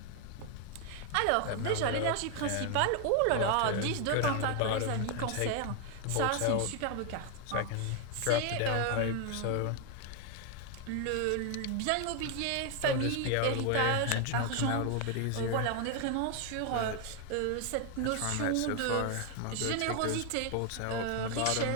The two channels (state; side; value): different; both; correlation 0.00